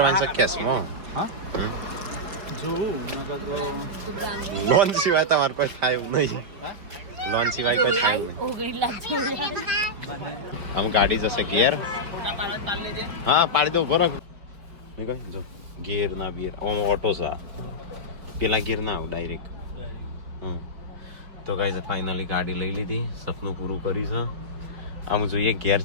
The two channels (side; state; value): left; late; 5.1 ms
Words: છે કેશમાં. હા હમ. જોઉં નકર તો લોન સિવાય તમારે કોઈ થાય એવું નહીં. લોન સિવાય કોઈ થાય એવું નહીં. આમ ગાડી જશે ગેર. હા પાડી દો ઉભો રાખ. મેં કહ્યું જો ગેર ના બિયર ઓટો છે આ. પેલા ગેર ના આવ ડાયરેક્ટ. તો ગાઈસ ફાઇનલી ગાડી લઈ લીધી, સપનું પૂરું કર્યું છે. આમ જોઈએ ગેર